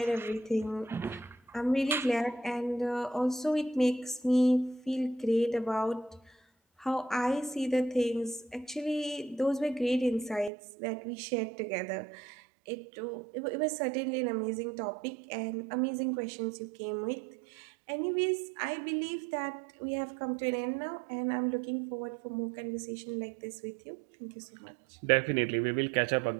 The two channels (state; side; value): drops out; left; at 10.5 s